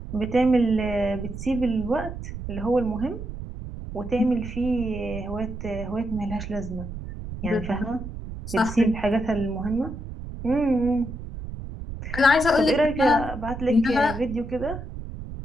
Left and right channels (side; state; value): right; noise; rumble, 9 dB below the sound